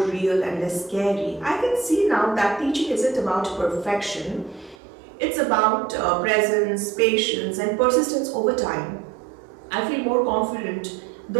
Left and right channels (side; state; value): left; drops out; at 4.8 s